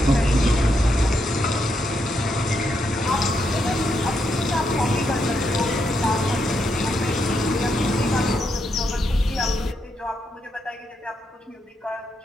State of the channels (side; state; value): both; normal; correlation 0.80